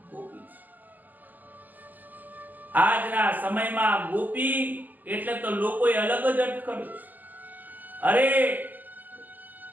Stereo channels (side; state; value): left; late; 0.084 ms